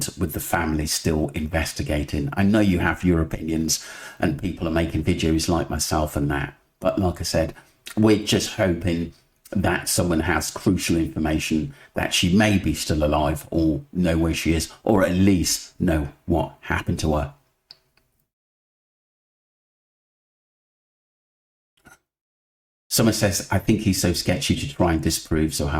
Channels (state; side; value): identical; both; correlation 1.00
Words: with the family still investigating. I know you have your opinions and people are making videos like myself and that, but like I said, we're just hoping that someone has crucial information that she may be still alive or know where she is, or at least know what happened to her. Someone says, I think he's so sketchy to try and disprove